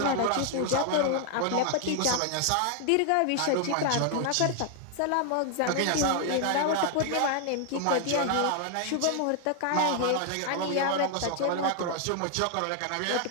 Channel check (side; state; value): both; different; correlation 0.00